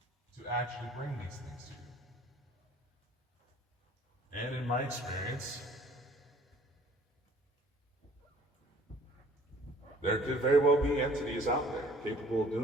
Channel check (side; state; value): both; normal; correlation 0.54